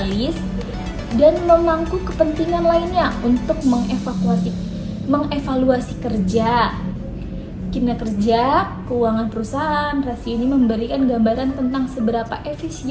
dan memangku kepentingan lainnya untuk mengevaluasi kinerja keuangan perusahaan. Rasio ini memberikan gambaran tentang seberapa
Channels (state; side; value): identical; both; correlation 1.00